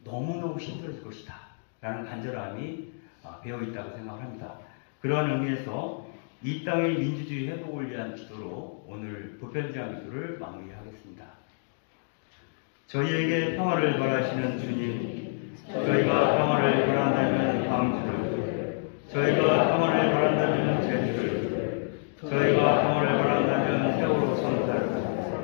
너무너무 힘들어질 것이다 라는 간절함이 배어있다고 생각합니다. 그러한 의미에서 이 땅의 민주주의 회복을 위한 기도로 오늘 보편제한 기도를 마무리하겠습니다. 저희에게 평화를 바라시는 주님, 저희가 평화를 바란다면 광주를, 저희가 평화를 바란다면 제주를, 저희가 평화를 바란다면 세월호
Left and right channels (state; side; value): silent; right; digital silence